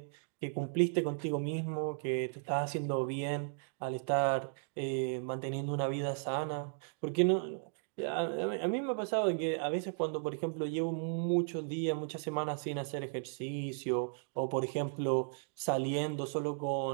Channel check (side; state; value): left; silent; digital silence